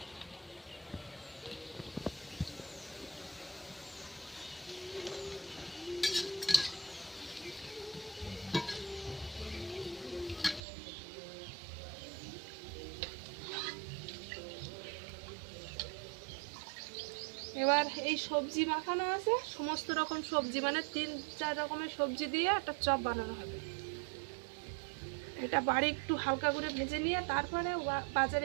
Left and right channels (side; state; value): left; drops out; at 10.6 s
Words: এবার এই সবজি মাখানো আছে, সমস্ত রকম সবজি, মানে 3-4 রকমের সবজি দিয়ে একটা চপ বানানো হবে। এটা বাড়ি একটু হালকা করে ভেজে নিয়ে তারপরে